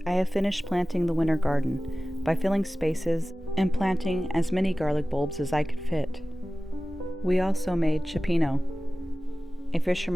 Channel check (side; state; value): both; normal; correlation 0.96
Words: I have finished planting the winter garden by filling spaces and planting as many garlic bulbs as I could fit. We also made Cioppino, a